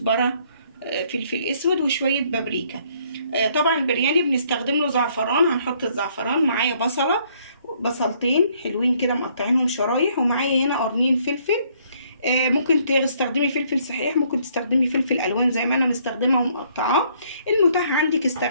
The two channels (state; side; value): inverted; both; correlation -0.66